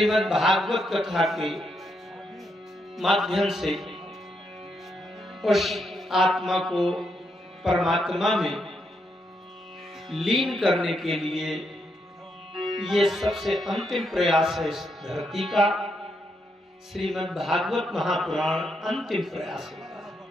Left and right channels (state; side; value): normal; both; correlation 0.79